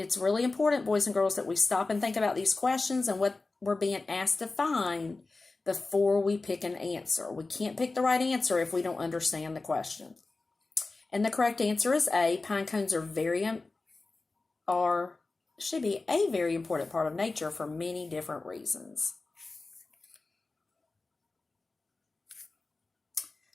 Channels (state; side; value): quieter; right; 3.5 dB